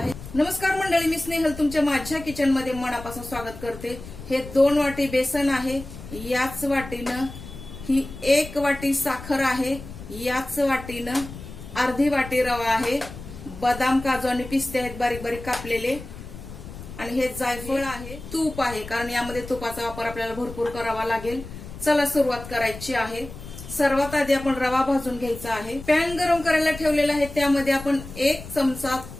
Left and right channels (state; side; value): noise; left; rumble, 13 dB below the sound